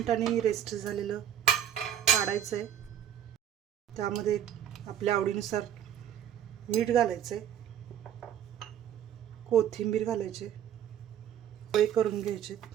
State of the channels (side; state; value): left; quieter; 10.0 dB